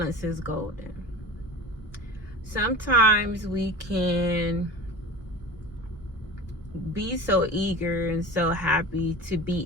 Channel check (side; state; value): both; normal; correlation 0.36